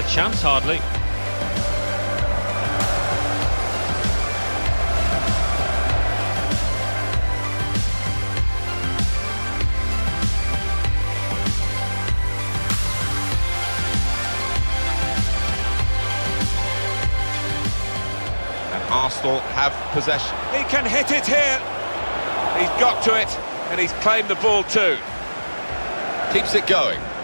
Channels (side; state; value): both; inverted; correlation -1.00